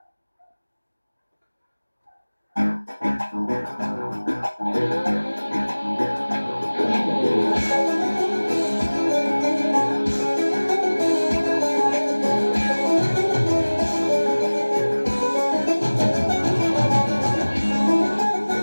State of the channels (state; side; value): inverted; both; correlation -1.00